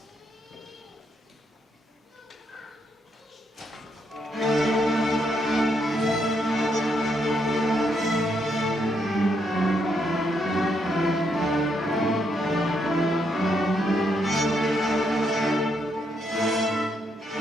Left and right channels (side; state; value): both; normal; correlation 0.77